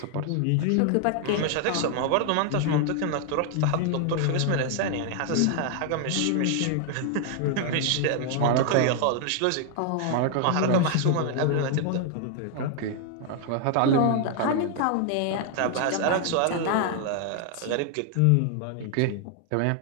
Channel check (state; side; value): different; both; correlation 0.00